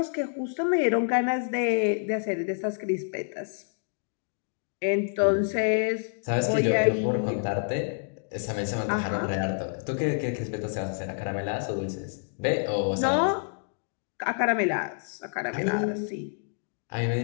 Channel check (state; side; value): silent; right; digital silence